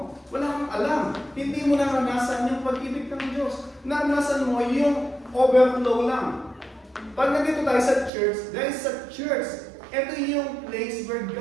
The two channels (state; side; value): drops out; left; at 8.1 s